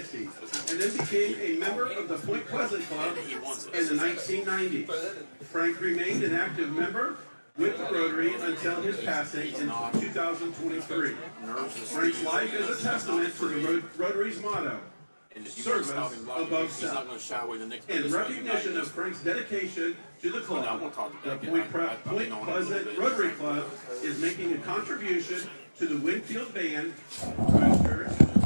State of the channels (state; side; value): inverted; both; correlation -1.00